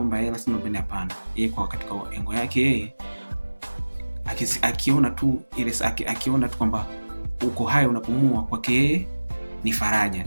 hela sina bana, hapana. Yeye kwa katika engo yake yeye akiona tu ile akiona tu kwamba uko hai unapumua, kwake yeye ni faraja.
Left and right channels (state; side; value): inverted; both; correlation -1.00